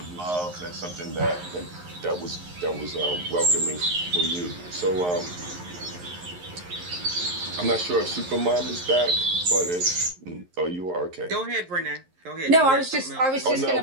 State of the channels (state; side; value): late; left; 11 ms